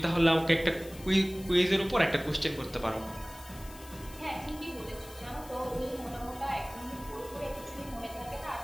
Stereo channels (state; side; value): noise; left; hiss, 19 dB below the sound